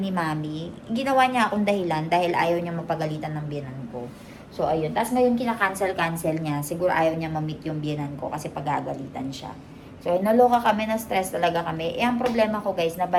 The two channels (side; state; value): both; identical; correlation 1.00